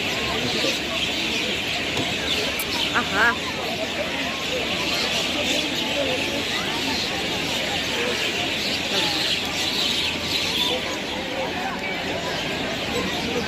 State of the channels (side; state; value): both; identical; correlation 1.00